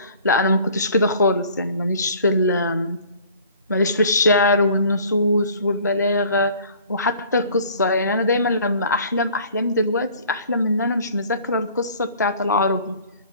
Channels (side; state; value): both; inverted; correlation -0.51